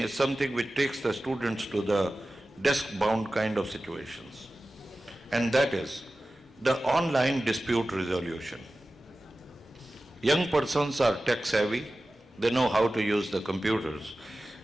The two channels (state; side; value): normal; both; correlation 0.95